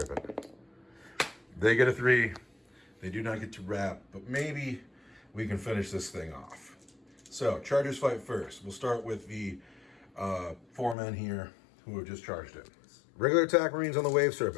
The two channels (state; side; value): drops out; right; at 11.0 s